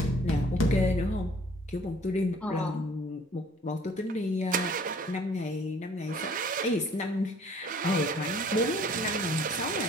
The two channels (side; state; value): both; normal; correlation 0.55